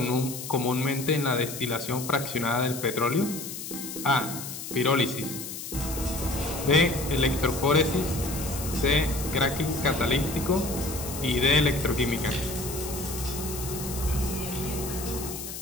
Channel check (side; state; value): left; noise; hiss, 8 dB below the sound